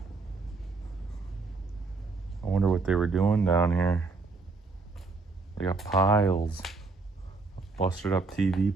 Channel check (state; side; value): quieter; left; 3.9 dB